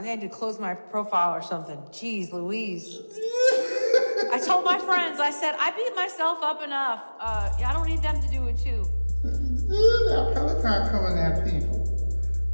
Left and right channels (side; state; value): both; inverted; correlation -1.00